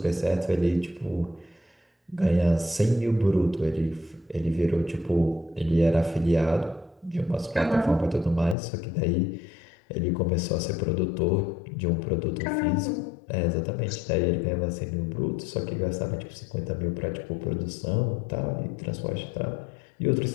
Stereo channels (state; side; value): drops out; right; at 8.6 s